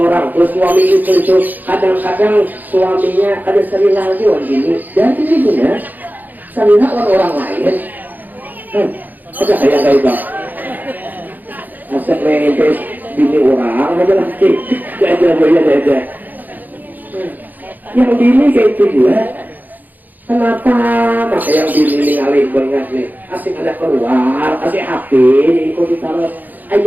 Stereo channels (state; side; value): late; left; 0.084 ms